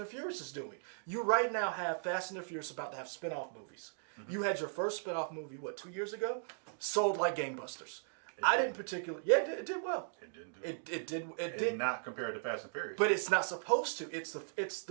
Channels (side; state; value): left; silent; digital silence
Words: the Furious is doing. You right now have Fast and the Furious about to have spin-off movies. You had your first spin-off movie, 2 years ago? Sold like gangbusters. I didn't particularly... Yeah, it did well. It didn't do It did. It not compared to Fast and Furious. But it's not supposed to. It's